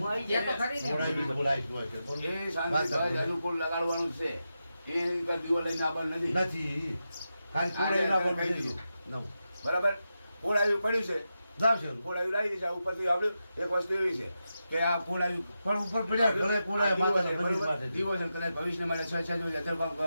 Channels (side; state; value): both; inverted; correlation -0.89